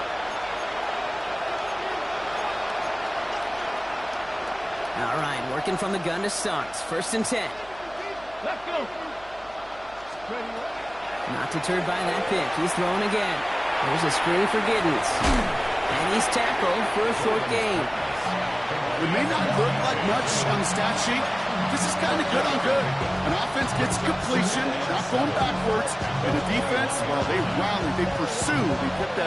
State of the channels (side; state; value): right; noise; hum, 23 dB below the sound